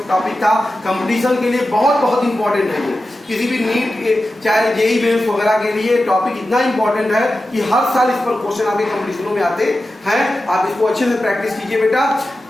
टॉपिक था, कंपटीशन के लिए बहुत इंपॉर्टेंट है। ये किसी भी नीट चाहे जेईई मेंस वगैरह के लिए टॉपिक इतना इंपॉर्टेंट है कि हर साल इस पर क्वेश्चन आपके कंपटीशनों में आते हैं। आप इसको अच्छे से प्रैक्टिस कीजिए बेटा।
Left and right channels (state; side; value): normal; both; correlation 0.93